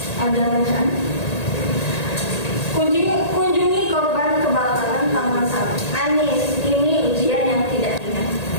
Ada bacaan? Kunjungi korban kebakaran Taman Sari. Anis, ini ujian yang tidak ringan.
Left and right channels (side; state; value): right; late; 1.8 ms